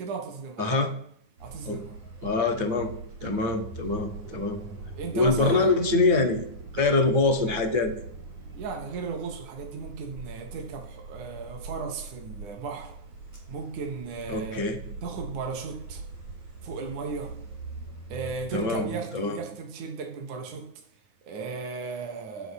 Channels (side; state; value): left; late; 9.5 ms